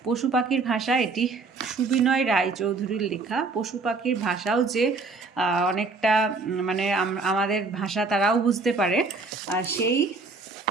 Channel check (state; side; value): quieter; left; 4.0 dB